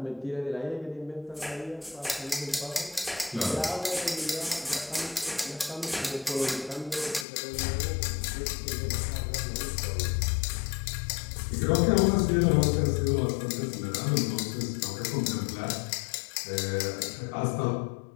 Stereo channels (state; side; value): drops out; right; at 7.2 s